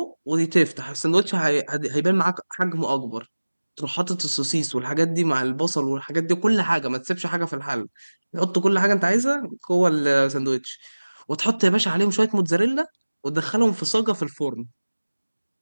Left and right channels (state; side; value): inverted; both; correlation -1.00